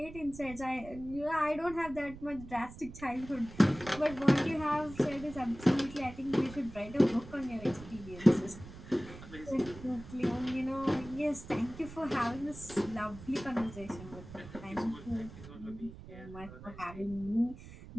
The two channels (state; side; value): noise; right; rumble, 15 dB below the sound